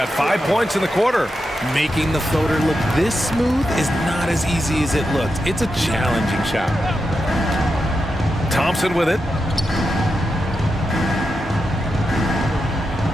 5 points in the quarter. Making the floater look this smooth is not as easy as it looks. It's a challenging shot. Thompson with it.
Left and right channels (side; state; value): both; normal; correlation 0.87